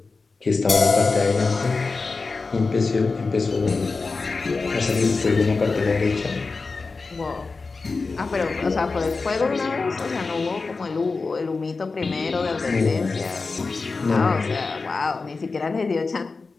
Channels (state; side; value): quieter; right; 4.1 dB